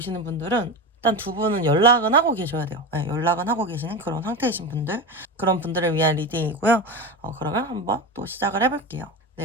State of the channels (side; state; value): both; normal; correlation 0.21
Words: 분들은 일단 두 분은 연락은 하고 계셔야 돼요. 네, 연락은 하고 계시는 그런 상태이신 분들, 그런 분들을 위한 리딩이고요. 그러면 한번 또 시작을 해볼게요.